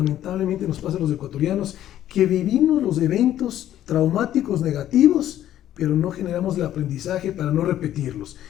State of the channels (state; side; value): quieter; right; 12.1 dB